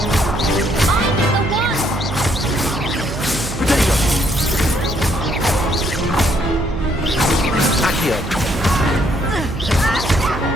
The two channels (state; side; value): noise; right; hum, 7 dB below the sound